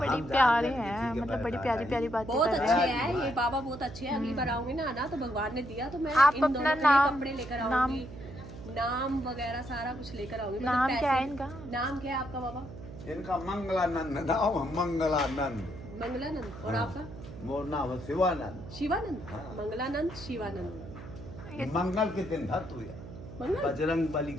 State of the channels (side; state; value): right; noise; hum, 13 dB below the sound